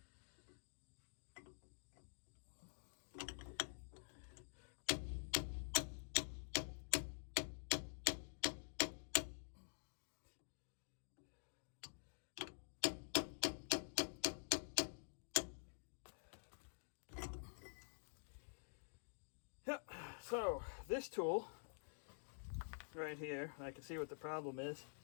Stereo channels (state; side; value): silent; right; digital silence